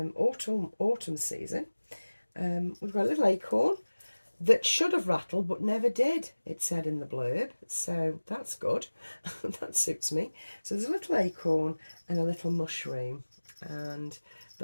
season. We've got a little acorn that should have rattled but never did, it said in the blurb, so that's good. That suits me. So there's a little acorn and a little mushroom, and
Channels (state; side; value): inverted; both; correlation -1.00